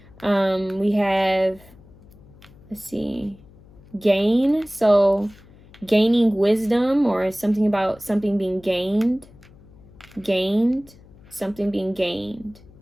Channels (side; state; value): left; noise; hum, 24 dB below the sound